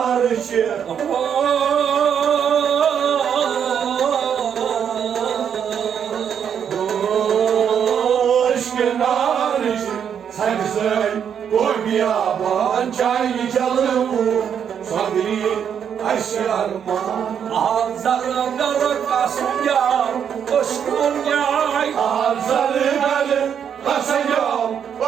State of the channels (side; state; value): left; quieter; 8.1 dB